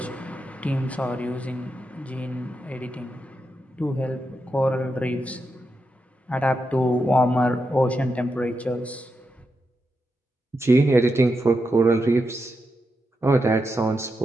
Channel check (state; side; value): normal; both; correlation 0.86